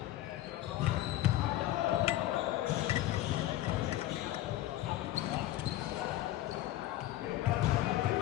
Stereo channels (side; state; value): right; quieter; 14.9 dB